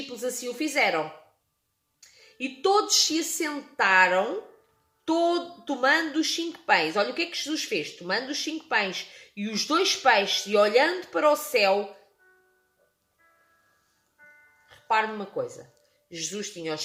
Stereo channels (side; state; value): both; identical; correlation 1.00